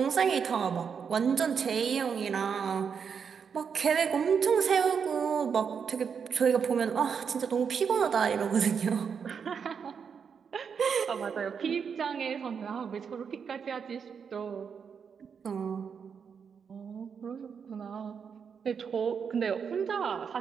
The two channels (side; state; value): left; quieter; 6.6 dB